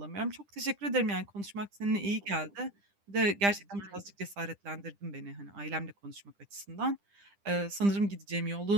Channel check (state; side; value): late; left; 10 ms